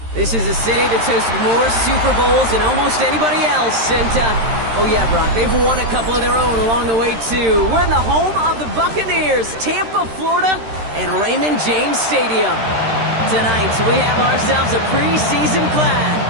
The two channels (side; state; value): left; late; 13 ms